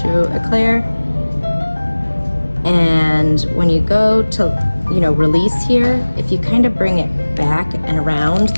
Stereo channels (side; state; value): both; inverted; correlation -1.00